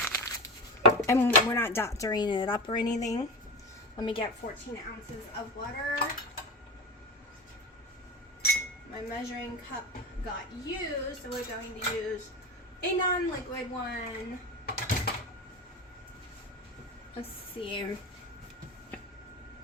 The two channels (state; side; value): normal; both; correlation 0.22